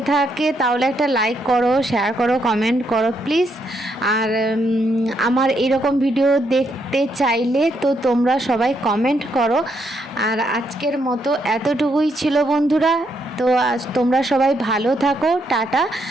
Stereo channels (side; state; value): both; normal; correlation 0.76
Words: থাকে তাহলে একটা লাইক করো, শেয়ার করো, কমেন্ট করো প্লিজ। আর আমার এরকম ভিডিও দেখতে চাইলে তো তোমরা সবাই কমেন্ট করো। আর আজকের মতো এতটুকুই ছিল বন্ধুরা। তো আজ তোমরা সবাই ভালো থাকো, টাটা।